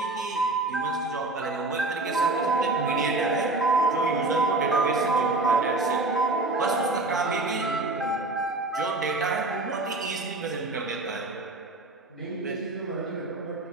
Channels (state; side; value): quieter; left; 3.0 dB